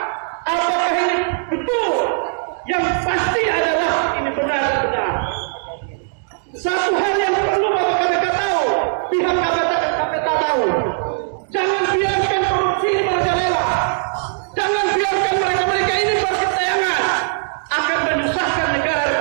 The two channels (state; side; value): silent; left; 66 dB below the other